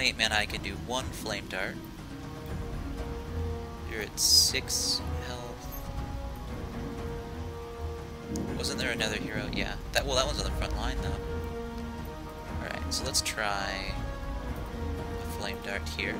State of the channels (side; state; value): both; identical; correlation 1.00